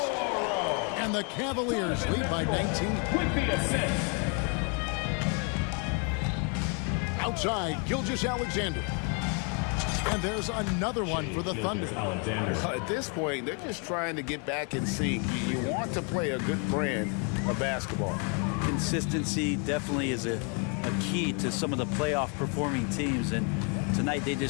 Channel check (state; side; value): quieter; right; 37.2 dB